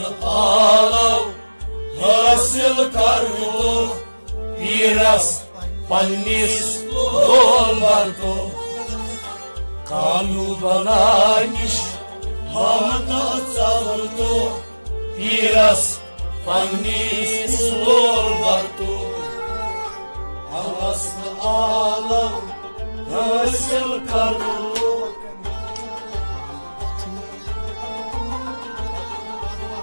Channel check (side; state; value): both; inverted; correlation -1.00